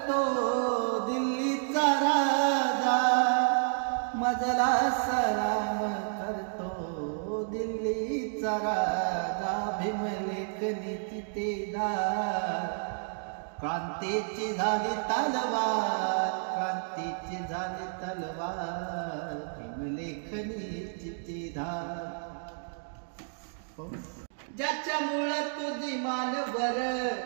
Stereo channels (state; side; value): silent; left; digital silence